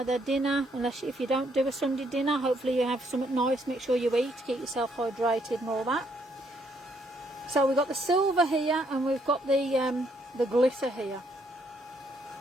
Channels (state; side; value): normal; both; correlation 0.71